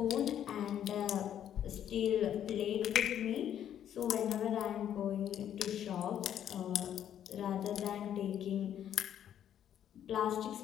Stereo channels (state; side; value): quieter; right; 10.1 dB